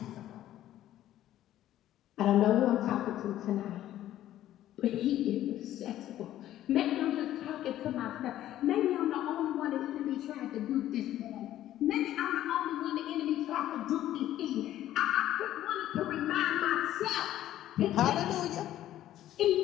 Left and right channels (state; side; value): quieter; right; 12.9 dB